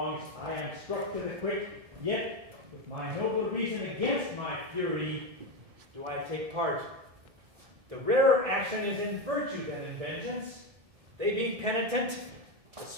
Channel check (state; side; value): late; left; 1.7 ms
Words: I am struck to the quick, yet with my noble reason against my fury do I take part. The rarer action is in virtue than in vengeance. They being penitent, the